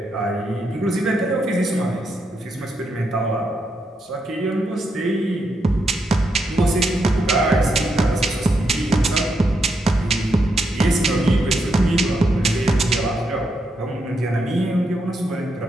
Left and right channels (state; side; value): normal; both; correlation 0.81